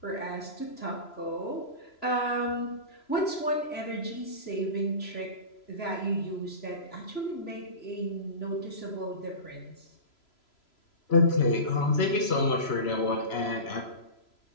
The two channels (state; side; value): late; right; 3.0 ms